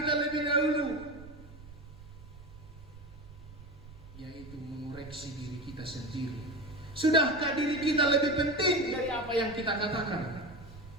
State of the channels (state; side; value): noise; right; rumble, 18 dB below the sound